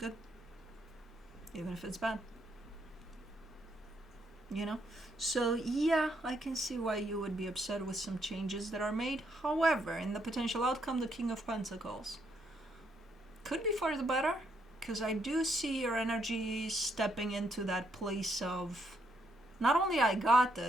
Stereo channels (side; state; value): both; normal; correlation 0.75